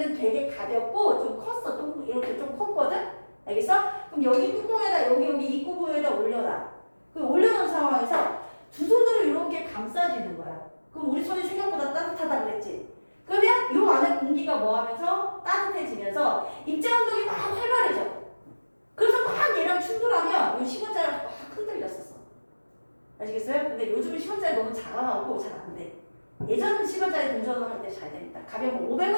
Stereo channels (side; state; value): both; inverted; correlation -1.00